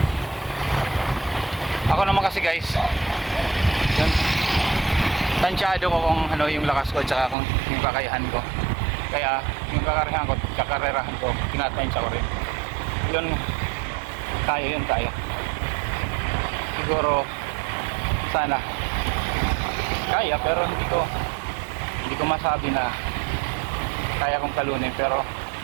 Ako naman kasi guys, yun, tansyado ko kung ano yung lakas ko at saka kung yung kakayahan ko. Kaya yung kakarerahan ko, tinatansya ko rin. Yun, kaya. Siguro sana kaya, pero hindi ko masabi na kaya kong talunin, pero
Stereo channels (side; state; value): left; drops out; at 7.4 s